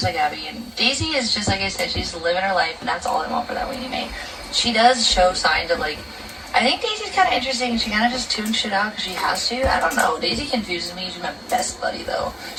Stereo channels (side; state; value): both; identical; correlation 1.00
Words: like Abby. And Daisy is just like I said, she's living her life, and that's all I want for that weenie mate. She does show signs of like. I think Daisy's kind of interesting. She kind of just tunes shit out because she has to. I don't know. Daisy confuses me. She's my best buddy, though.